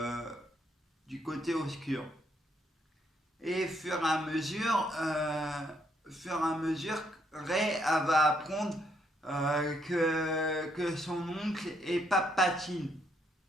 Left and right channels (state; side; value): normal; both; correlation 0.73